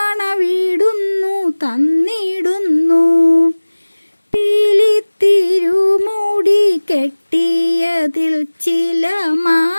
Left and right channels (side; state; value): both; inverted; correlation -1.00